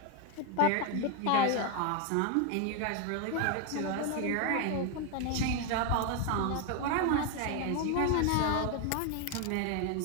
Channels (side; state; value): both; different; correlation 0.01